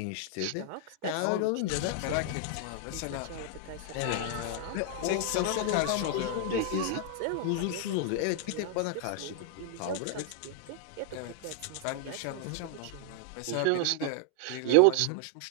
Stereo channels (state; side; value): different; both; correlation 0.00